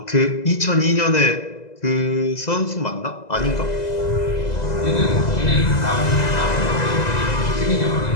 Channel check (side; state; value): right; late; 2.0 ms